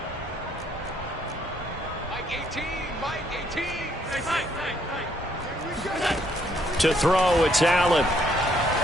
To throw, it's Allen.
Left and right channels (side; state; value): both; normal; correlation 0.69